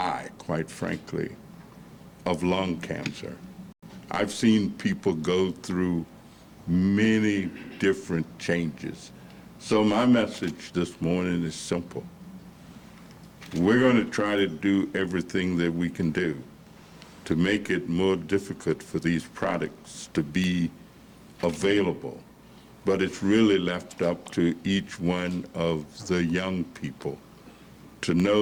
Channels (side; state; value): both; identical; correlation 1.00